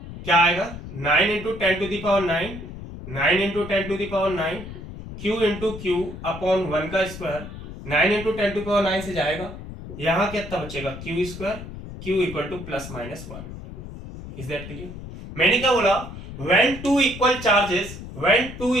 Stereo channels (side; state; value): left; noise; rumble, 12 dB below the sound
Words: क्या आएगा 9 into 10 to the power 9, 9 into 10 to the power 9, Q into Q upon 1 का स्क्वायर। 9 इंटू 10 टू पावर 9 से जाएगा, यहां कितना बचेगा Q square, Q equal two plus minus 1। Is that clear? मैंने क्या बोला, when two equal